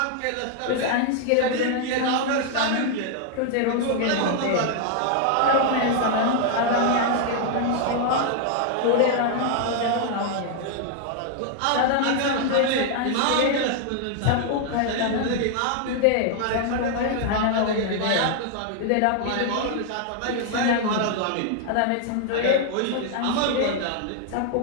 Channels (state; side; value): different; both; correlation 0.00